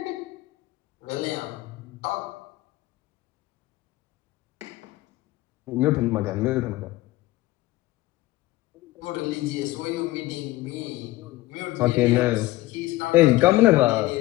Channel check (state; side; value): quieter; right; 17.8 dB